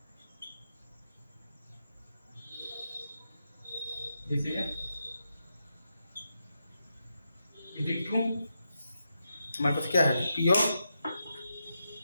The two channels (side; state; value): both; inverted; correlation -0.86